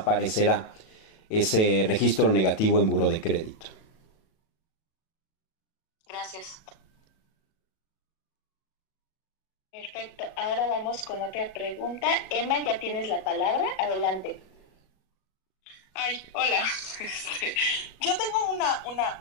ese registro negativo en buró de crédito. Gracias. Perfecto. Ahora vamos con otra pregunta. Emma, ya tienes la palabra. Adelante. Ay, hola. Yo tengo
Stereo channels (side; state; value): right; late; 37 ms